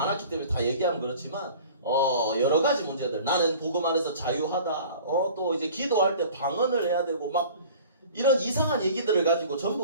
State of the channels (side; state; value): both; inverted; correlation -0.45